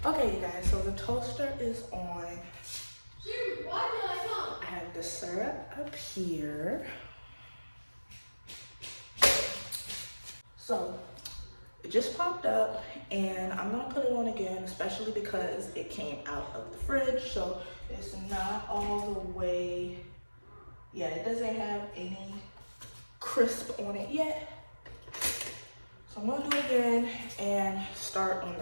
Okay, you guys, so the toaster is on. I have the syrup up here. So it just popped up, and I'm gonna put it on again, especially because it came out of the fridge, so it's not all the way, yeah, it doesn't have any crisp on it yet. So I'm gonna do it again and start on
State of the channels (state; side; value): inverted; both; correlation -1.00